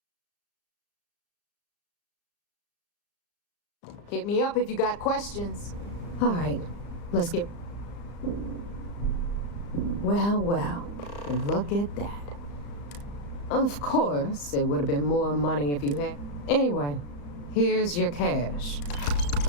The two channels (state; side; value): late; right; 35 ms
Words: Hit me up if you got questions. All right, let's get... Well, look at that. Of course, it would have been more money if you had... Anyway, here's your cash.